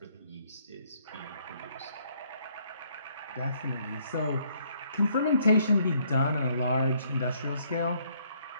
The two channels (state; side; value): inverted; both; correlation -0.67